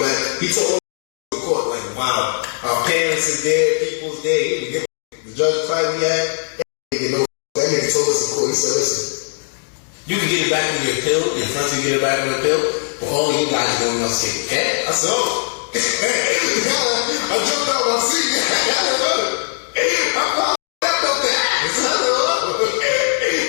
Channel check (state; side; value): silent; right; 59 dB below the other